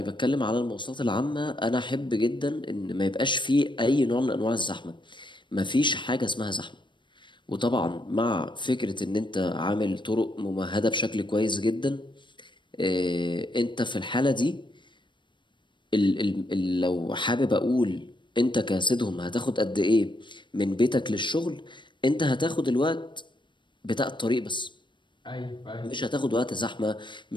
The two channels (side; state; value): right; late; 0.23 ms